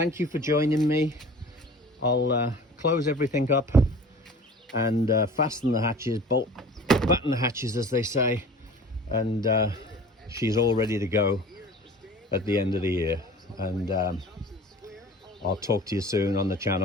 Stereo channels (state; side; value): normal; both; correlation 0.43